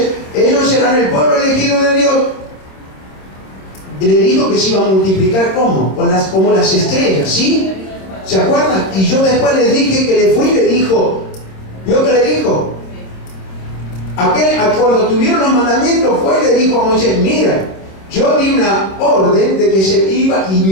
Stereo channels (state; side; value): late; right; 26 ms